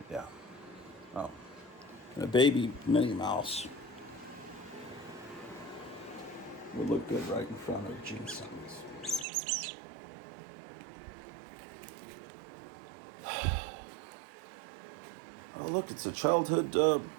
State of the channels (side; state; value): left; drops out; at 9.2 s